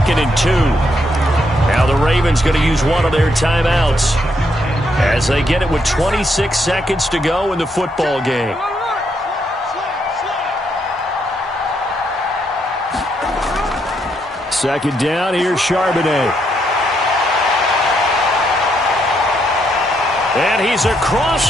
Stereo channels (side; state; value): both; normal; correlation 0.76